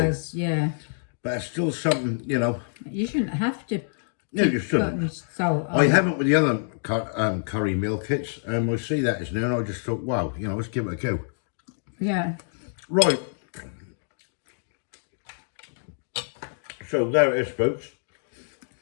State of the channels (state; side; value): silent; right; digital silence